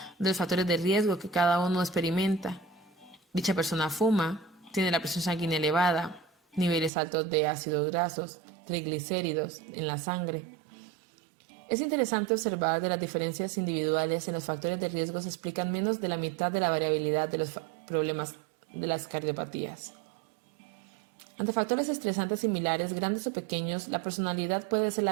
los factores de riesgo que cada uno experimenta. Dicha persona fuma, tiene la presión sanguínea elevada, niveles altos de ácidos grasos, triglicéridos en la sangre. Es interesante observar que las diferencias individuales en los factores de riesgo se explican menos de la mitad de la variabilidad de los problemas de las cardiopatías. Ante factores estresantes similares, grandes o pequeños, la personalidad puede ser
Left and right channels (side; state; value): left; drops out; at 6.9 s